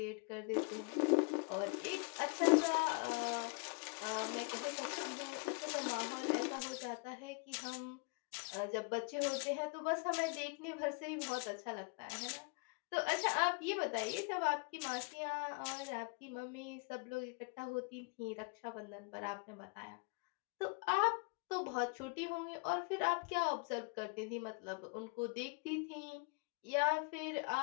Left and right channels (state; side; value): quieter; right; 33.6 dB